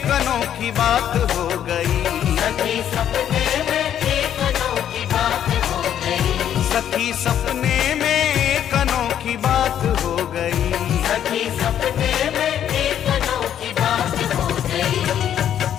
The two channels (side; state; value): right; quieter; 10.1 dB